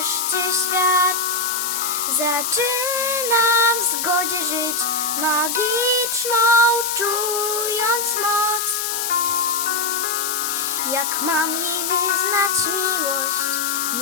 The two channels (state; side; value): noise; left; hiss, 2 dB below the sound